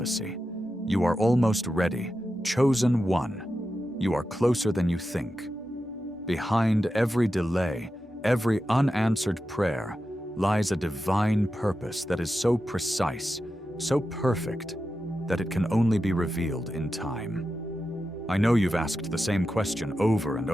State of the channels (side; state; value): both; normal; correlation 0.90